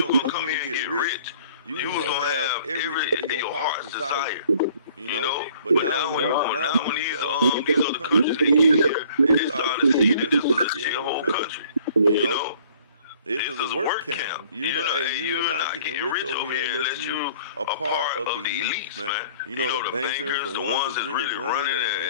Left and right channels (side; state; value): both; inverted; correlation -0.55